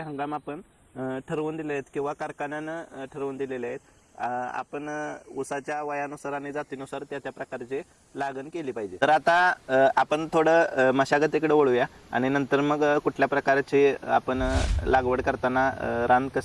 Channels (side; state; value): both; identical; correlation 1.00